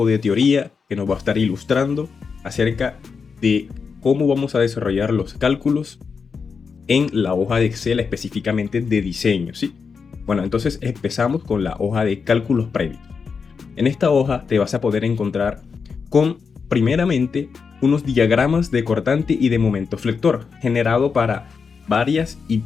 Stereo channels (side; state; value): right; quieter; 5.5 dB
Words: de teoría que nos va a estar ilustrando acerca de cómo vamos a desarrollar los cálculos en la hoja de Excel específicamente de diseño, ¿sí? Bueno, entonces empezamos con la hoja de cálculos previos. En esta hoja te vas a poder encontrar con, primeramente, unos diagramas de cortante y de momento flector, generado para varias